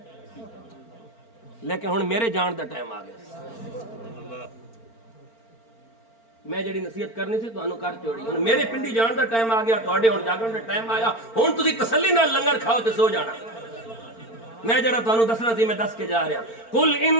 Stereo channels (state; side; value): late; right; 4.4 ms